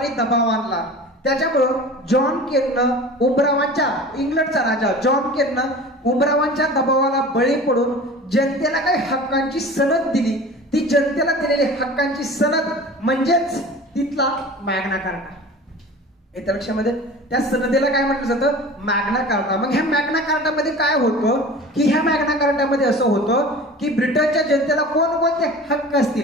दबाव आणला. त्याच्यामुळं जॉन केननं उमरावांच्या, इंग्लंडचा राजा जॉन केननं उमरावांच्या दबावाला बळी पडून जनतेला काही हक्कांची सनद दिली. ती जनतेला दिलेली हक्कांची सनद म्हणजेच तिथला मॅग्ना कार्टा. येत्या लक्षामध्ये त्या सनदेला काय म्हटलं जातं, मॅग्ना कार्टा. मग ह्या मॅग्ना कार्टामध्ये काय होतं की ह्या मॅग्ना कार्टामध्ये असं होतं की ब्रिटनच्या जनतेला कोणकोणते हक्क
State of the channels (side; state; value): both; normal; correlation 0.39